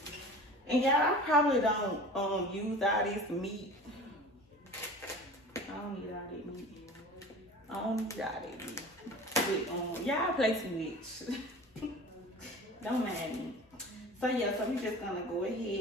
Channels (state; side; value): normal; both; correlation 0.39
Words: And yeah, I probably don't use all this meat. I don't need all that meat. I don't need all that meat. But y'all play too much. Don't mind me. So yeah, so we just gonna go